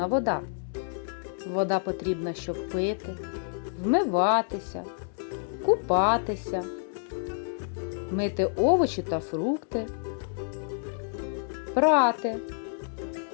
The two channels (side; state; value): right; silent; 59 dB below the other